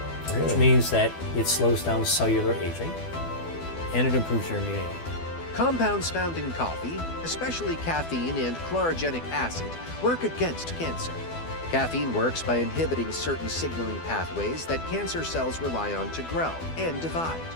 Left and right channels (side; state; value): right; late; 12 ms